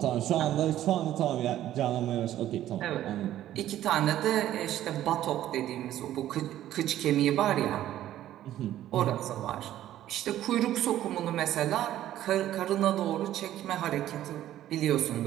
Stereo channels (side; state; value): left; quieter; 12.8 dB